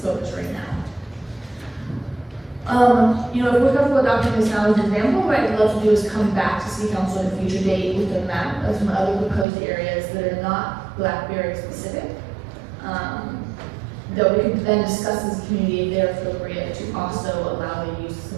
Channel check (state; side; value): drops out; left; at 9.5 s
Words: right now. You know, if we're comfortable adopting this now as an example, what I'd love to do is come back to City Council at a future date with a map of some other proposed areas that are not blackberry specific. That we could then discuss as a community if they're appropriate to also allow the use of